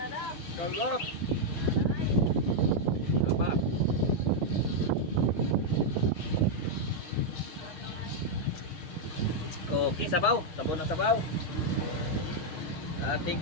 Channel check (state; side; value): late; right; 6.3 ms